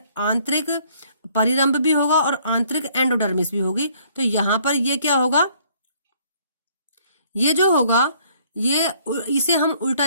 आंतरिक परिरंभ भी होगा और आंतरिक एंडोडर्मिस भी होगी। तो यहाँ पर ये क्या होगा, ये जो होगा ये इसे हम उल्टा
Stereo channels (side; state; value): both; inverted; correlation -0.62